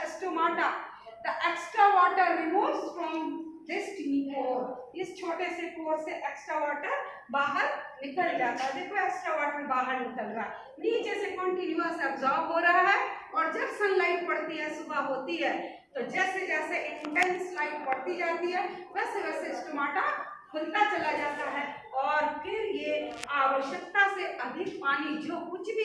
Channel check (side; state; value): both; identical; correlation 1.00